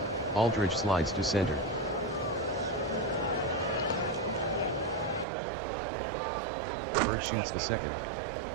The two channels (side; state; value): left; drops out; at 5.2 s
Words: Aldridge slides to center. Bird shoots the second.